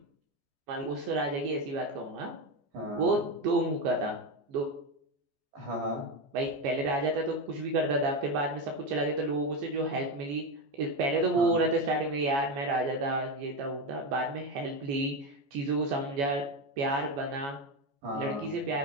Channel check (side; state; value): left; late; 14 ms